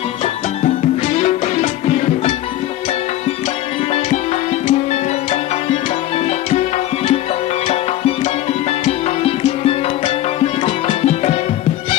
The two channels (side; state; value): right; quieter; 13.9 dB